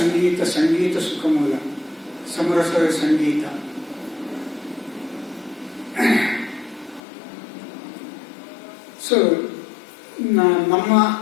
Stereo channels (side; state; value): right; drops out; at 7.0 s